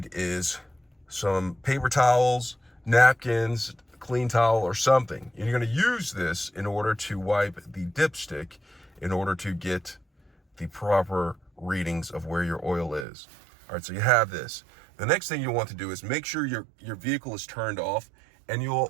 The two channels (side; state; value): left; drops out; at 13.1 s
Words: is some paper towels, napkins, clean towel, or something. And you're going to use this in order to wipe the dipstick in order to get the proper readings of where your oil is. All right, so you have this. The next thing you want to do is make sure your vehicle is turned off, and